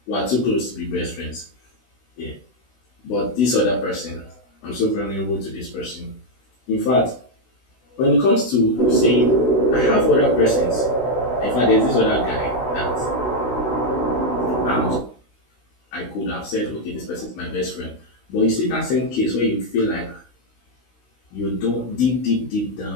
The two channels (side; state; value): right; late; 16 ms